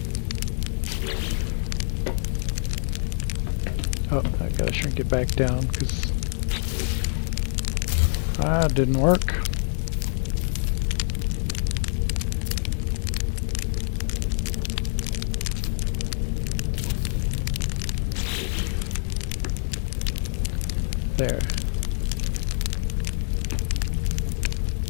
Oh, I gotta shrink it back down because it didn't work. There.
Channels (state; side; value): silent; right; digital silence